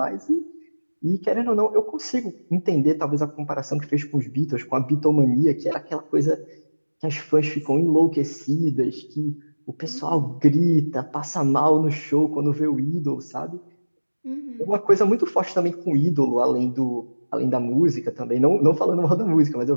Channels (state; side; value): inverted; both; correlation -1.00